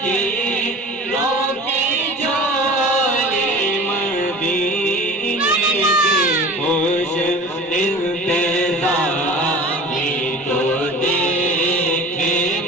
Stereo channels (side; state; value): both; normal; correlation 0.39